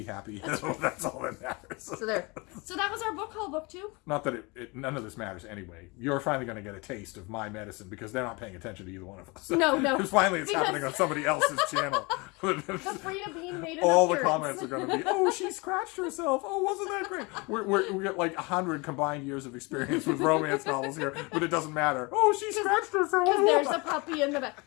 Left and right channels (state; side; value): quieter; right; 27.3 dB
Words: happy, that's all that matters. So there. So that was our book haul, booktube. Not that none of this matters anyway. You're finally going to get a taste of my medicine because they're not paying attention to either one of us. No. Because finally it's happening on somebody else's channel. The Freida bean made an All the appearance. comments are going to be, oh, she scratched herself. Oh, wasn't that great? We got like 100 combined years of experience with romance novels here, but it doesn't matter. Oh, she scratched herself. Because there's a puppy in the back.